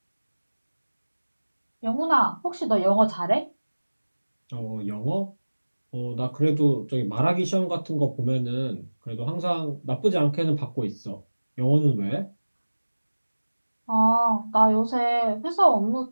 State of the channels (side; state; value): both; inverted; correlation -1.00